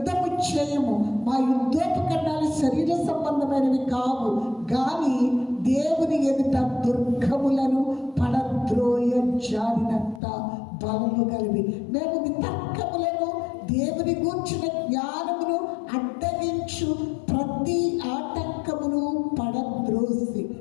చేయము. మా యుద్ధోపకరణాలు శరీర సంబంధమైనవి కావు, కానీ దేవుని ఎదుట దుర్గములను పడద్రోయ జారినంత బలము కలిగి మేము వితర్కములను దేవుని గూర్చిన జ్ఞానమును అడ్డగించు ప్రతి ఆటంకమును పడద్రోసి.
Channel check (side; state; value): right; drops out; at 10.2 s